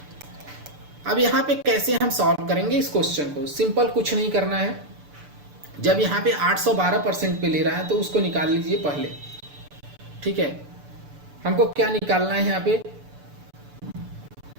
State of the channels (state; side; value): late; left; 6.9 ms